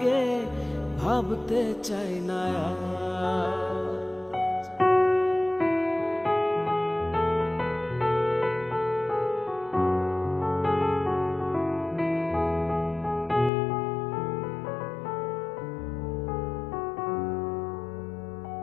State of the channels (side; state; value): right; drops out; at 13.5 s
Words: ভাবতে চাই না।